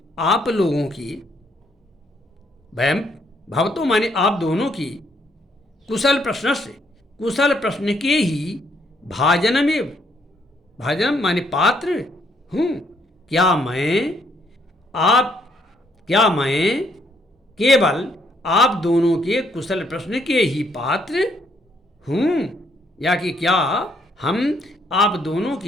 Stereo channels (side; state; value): both; normal; correlation 0.71